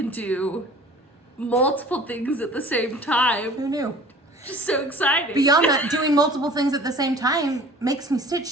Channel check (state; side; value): normal; both; correlation 0.46